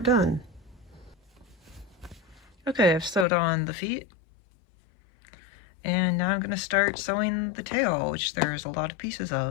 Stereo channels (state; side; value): drops out; right; at 3.2 s